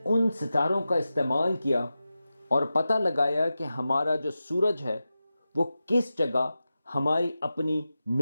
ان ستاروں کا استعمال کیا اور پتہ لگایا کہ ہمارا جو سورج ہے وہ کس جگہ ہماری اپنی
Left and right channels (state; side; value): inverted; both; correlation -0.93